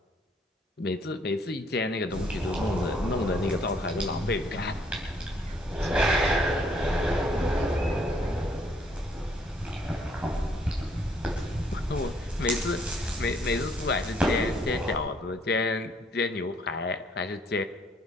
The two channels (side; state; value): both; normal; correlation 0.66